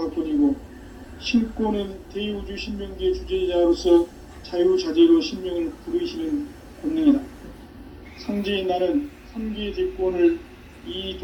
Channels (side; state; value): both; identical; correlation 1.00